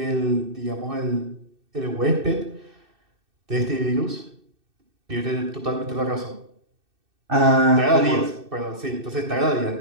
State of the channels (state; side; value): late; left; 2.6 ms